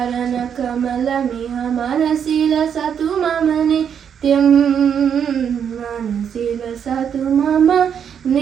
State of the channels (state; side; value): quieter; left; 8.0 dB